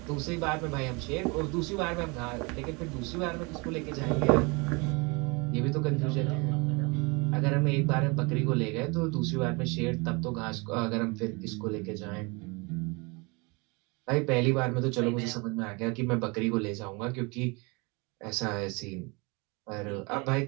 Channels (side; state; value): left; quieter; 28.5 dB